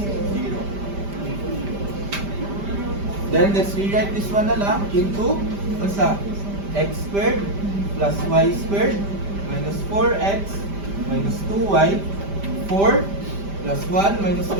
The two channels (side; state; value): left; late; 5.1 ms